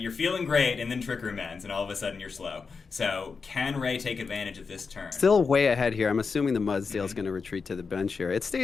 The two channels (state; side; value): quieter; right; 5.0 dB